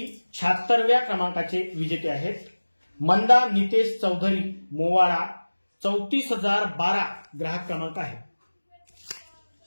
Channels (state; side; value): inverted; both; correlation -1.00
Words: 76व्या क्रमांकाचे विजेते आहेत मंदा नितेश चौधरी मोवाडा. 34,012 ग्राहक क्रमांक आहे.